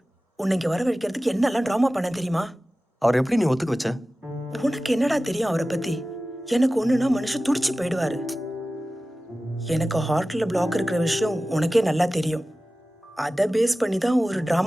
உன்னை இங்க வரவழைக்கிறதுக்கு என்னெல்லாம் ட்ராமா பண்ண தெரியுமா? அவர் எப்படி நீ ஒத்துக்க வச்ச? உனக்கு என்னடா தெரியும் அவரை பத்தி? எனக்கு ஒண்ணுனா மனுஷன் துடிச்சு போயிடுவாரு. எனக்கு ஹார்ட்ல பிளாக் இருக்கிற விஷயம் உனக்கே நல்லா தெரியும். அதை பேஸ் பண்ணி தான் ஒரு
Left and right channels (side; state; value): both; normal; correlation 0.96